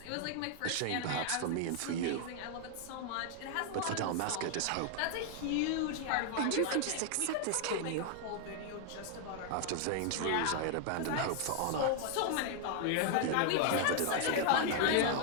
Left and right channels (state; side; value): different; both; correlation 0.00